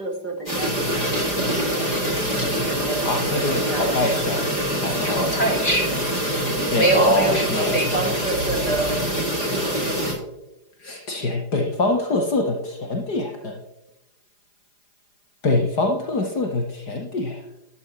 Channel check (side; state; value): right; late; 4.9 ms